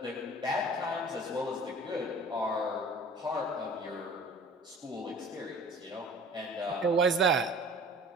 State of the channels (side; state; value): both; normal; correlation 0.45